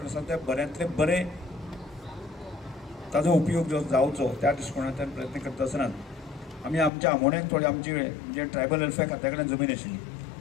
आसा ते बऱ्यांतले बरे ताजो उपयोग जो जावचो त्या दृश्टिकोनांतल्यान प्रयत्न करता आसतनात आमी आमच्या आमोण्याक थोडी आमचे म्हणजे ट्रायबल वेलफेअर खात्या कडेन जमीन आशिल्ली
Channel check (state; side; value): drops out; right; at 6.9 s